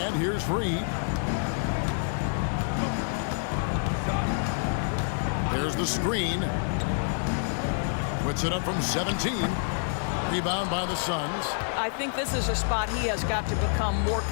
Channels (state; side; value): silent; right; digital silence